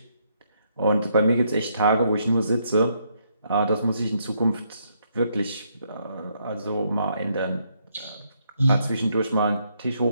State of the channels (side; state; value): both; inverted; correlation -0.73